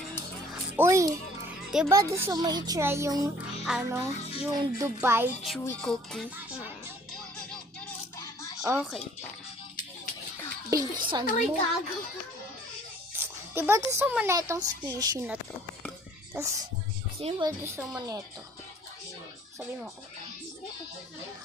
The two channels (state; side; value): normal; both; correlation 0.55